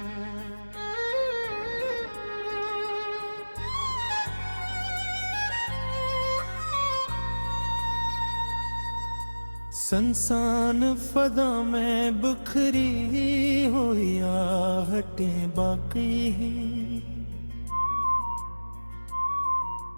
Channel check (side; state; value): both; inverted; correlation -1.00